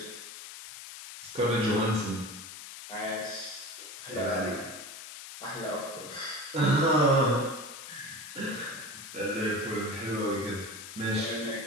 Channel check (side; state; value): left; noise; hiss, 12 dB below the sound